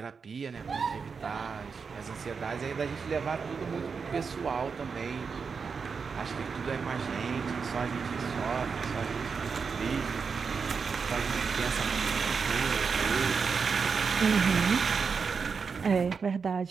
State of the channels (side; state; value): left; quieter; 5.5 dB